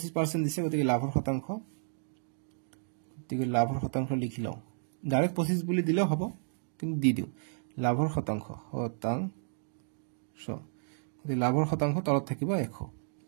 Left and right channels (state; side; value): silent; left; digital silence